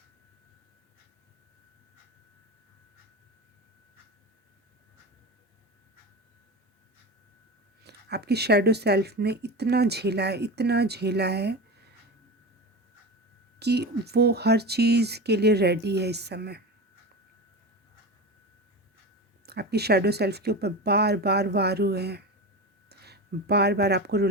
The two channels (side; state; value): both; normal; correlation 0.25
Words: आपकी शैडो सेल्फ ने इतना झेला है, इतना झेला है कि वो हर चीज़ के लिए रेडी है इस समय। आपकी शैडो सेल्फ के ऊपर बार बार वार हुए हैं, बार बार आपको